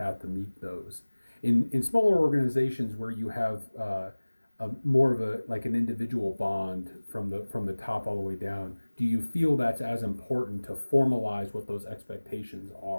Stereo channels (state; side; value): inverted; both; correlation -1.00